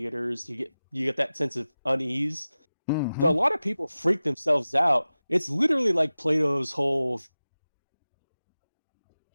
you get that sense of unease. So a mm-hmm. lot of people freak themselves out. It's literally like Plato's whole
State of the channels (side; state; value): both; inverted; correlation -0.95